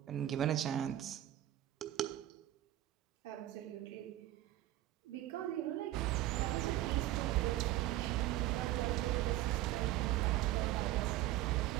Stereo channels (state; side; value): quieter; left; 14.4 dB